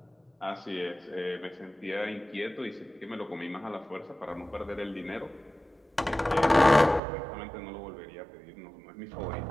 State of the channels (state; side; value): drops out; left; at 7.0 s